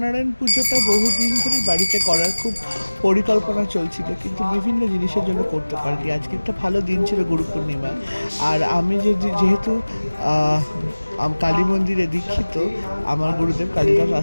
পুজোটা বহুদিন ধরে বাড়িতে করার খুব পরিকল্পনা চলছিল, কিন্তু বিভিন্ন জিনিসের জন্য করতে পারিনি। আজকে একটা ভালো দিন ছিল, গুরু পূর্ণিমা। আর আমি যেহেতু কালী মন্দিরে দীক্ষিত, আমার গুরুদেব কালিদাস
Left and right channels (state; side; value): inverted; both; correlation -1.00